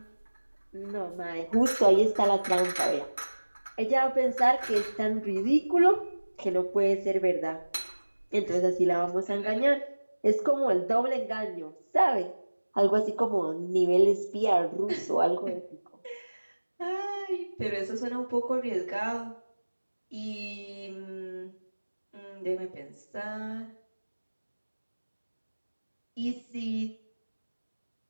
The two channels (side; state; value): both; inverted; correlation -1.00